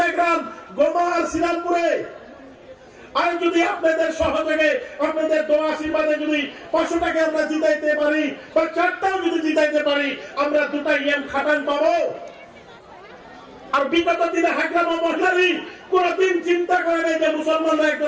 গোমা আর শ্রীরামপুরে। আর যদি আপনাদের সহযোগে, আপনাদের দোয়া আশীর্বাদে যদি 500টাকে আমরা জিতাইতে পারি বা 4টাও যদি জিতাইতে পারি, আমরা 2টা ইএম খাটান পাবো। আর বিগত দিনে হাইগ্রাম মহিলা লীগ কোনদিন চিন্তা করে নাই যে মুসলমানরা একটা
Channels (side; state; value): both; identical; correlation 1.00